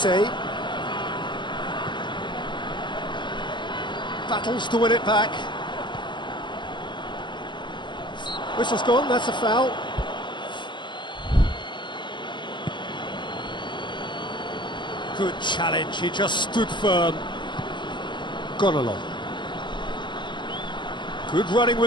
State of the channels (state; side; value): late; right; 0.22 ms